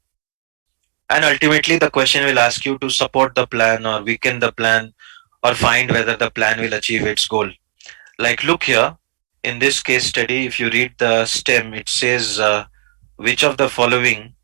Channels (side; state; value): left; silent; digital silence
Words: And ultimately the question will ask you to support the plan or weaken the plan or find whether the plan will achieve its goal. Like look here, in this case study, if you read the stem, it says which of the following,